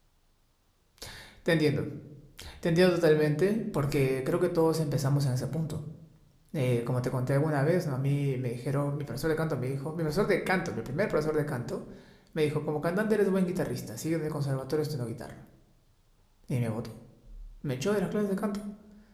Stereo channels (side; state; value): both; identical; correlation 1.00